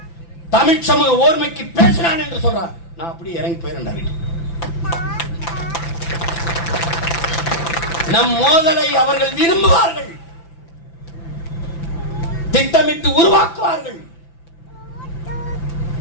தமிழ் சமூக ஓர்மைக்கு பேசினான் என்று சொல்றார், நான் அப்படி இறங்கி போயிருந்தேன். நம் மோதலை அவர்கள் விரும்புவார்கள், திட்டமிட்டு உருவாக்குவார்கள்.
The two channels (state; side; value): late; right; 5.9 ms